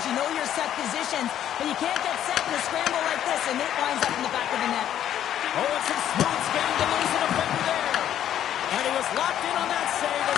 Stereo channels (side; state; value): right; quieter; 10.7 dB